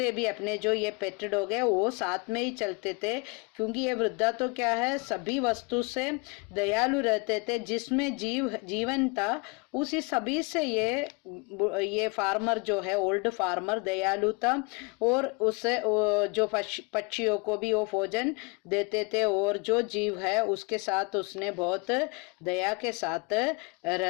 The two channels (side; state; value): right; quieter; 29.6 dB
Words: भी, अपने जो ये पेट डॉग है, वो साथ में ही चलते थे। क्योंकि ये वृद्धा तो क्या है, सभी वस्तु से दयालु रहते थे। जिसमें जीवन था, उसी सभी से ये फार्मर जो है, ओल्ड फार्मर दयालु था। और उसे जो पक्षियों को भी वो भोजन देते थे। और जो जीव है उसके साथ उसने बहुत दया के साथ